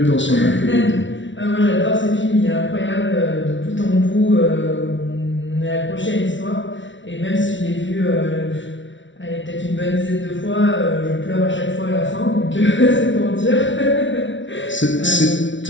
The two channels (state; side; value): late; right; 0.55 ms